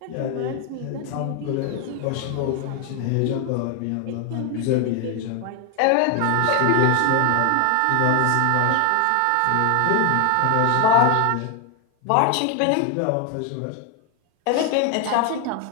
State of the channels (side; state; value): both; different; correlation 0.01